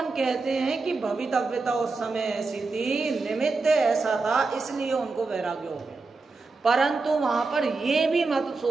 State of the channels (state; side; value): quieter; left; 3.9 dB